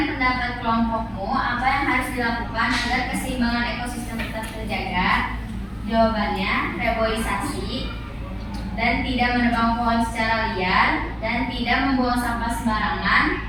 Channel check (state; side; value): identical; both; correlation 1.00